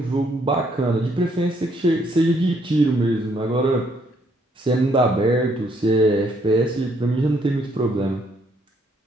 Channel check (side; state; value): both; normal; correlation 0.69